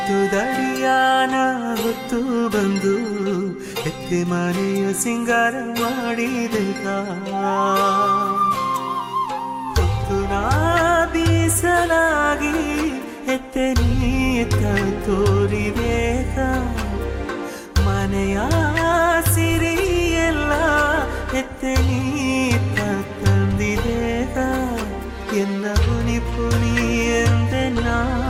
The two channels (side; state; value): both; identical; correlation 1.00